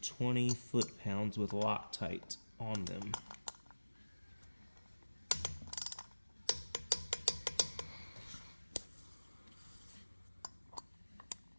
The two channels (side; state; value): both; inverted; correlation -1.00